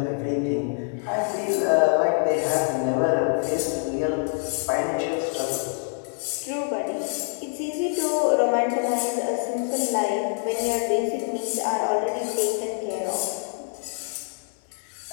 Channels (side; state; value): right; silent; 55 dB below the other